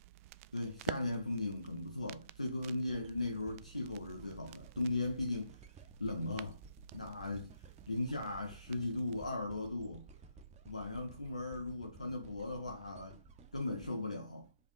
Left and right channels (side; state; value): both; inverted; correlation -0.80